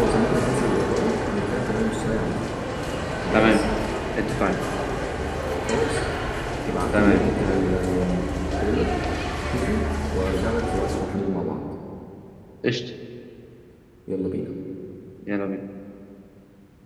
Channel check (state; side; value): identical; both; correlation 1.00